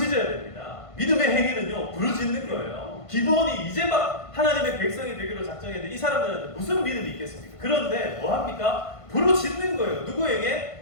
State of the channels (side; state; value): right; late; 1.5 ms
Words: 됩니다. 믿음의 행위는요 부르짖는 거예요. 기본이 이제 막 하나님의 백성이 되기로 작정했는데 이 사람들한테 무슨 믿음이 있겠습니까? 그런데 뭐 합니까? 부르짖는 거예요.